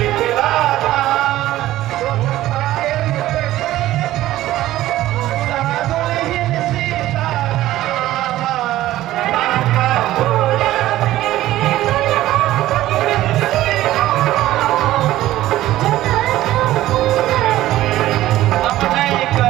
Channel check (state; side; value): quieter; left; 15.0 dB